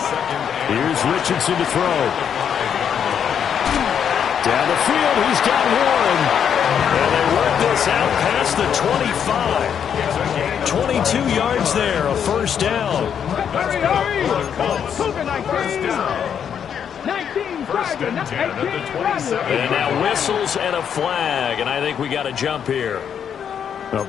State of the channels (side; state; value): right; quieter; 8.1 dB